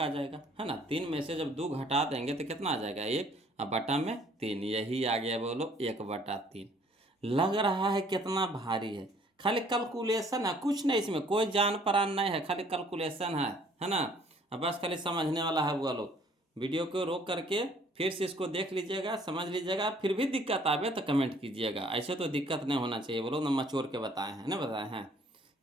आ जाएगा, है ना, 3 में से जब 2 घटा देंगे तो कितना आ जाएगा 1, अब बटा में 3, यही आ गया बोलो 1/3। लग रहा है कितना भारी है, खाली कैलकुलेशन है, कुछ नहीं इसमें कोई जान परान नहीं है, खाली कैलकुलेशन है ना। अब बस खाली समझने वाला है वो लोग, वीडियो को रोक करके फिर से इसको देख लीजिएगा, समझ लीजिएगा, फिर भी दिक्कत आवे तो कमेंट कीजिएगा, ऐसे तो दिक्कत नहीं होना चाहिए, वो लोग ना मचोर के बताए हैं ना बताए हैं।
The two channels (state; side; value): normal; both; correlation 0.59